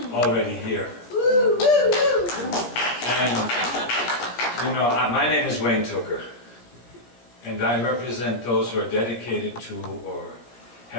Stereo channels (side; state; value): right; late; 17 ms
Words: already here. And, you know, my name is Wayne Tooker, and I represent those who are dedicated to or